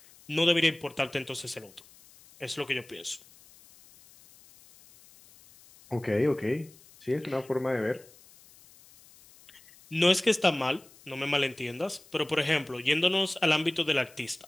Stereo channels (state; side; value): noise; left; hiss, 25 dB below the sound